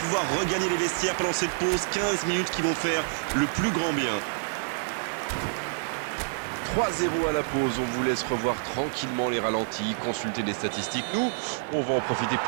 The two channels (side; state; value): left; silent; 60 dB below the other